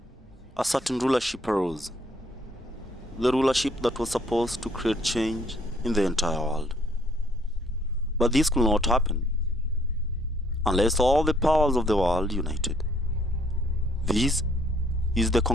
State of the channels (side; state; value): both; normal; correlation 0.64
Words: a certain rulership arose. The rulership that was supposed to create change in the entire world. But this could not happen unless all the powers of the world united. This is the